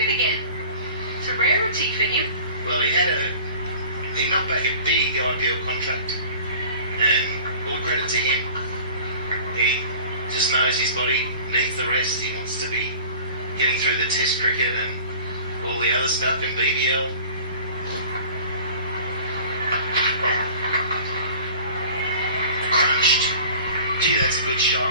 again. It's a rarity for him. Well, he knocked back a big IPL contract. And all credit to him. He just knows his body needs the rest. He wants to be getting through the test cricket and all the other stuff in BBL. Crunched. Gee, that's a good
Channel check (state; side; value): inverted; both; correlation -0.43